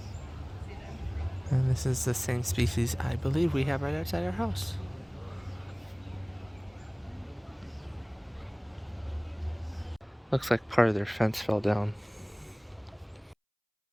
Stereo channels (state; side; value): identical; both; correlation 1.00